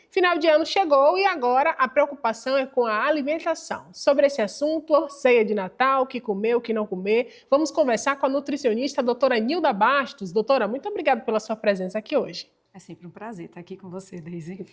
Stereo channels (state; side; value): identical; both; correlation 1.00